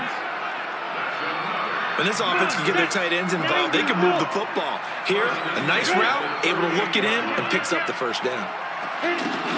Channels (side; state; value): both; identical; correlation 1.00